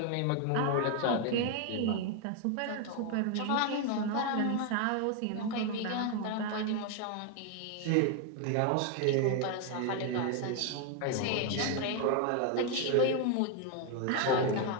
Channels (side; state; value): both; different; correlation 0.01